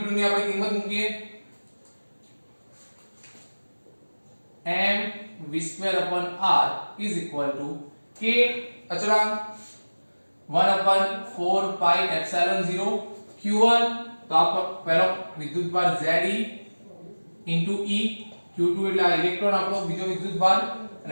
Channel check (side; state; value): both; inverted; correlation -1.00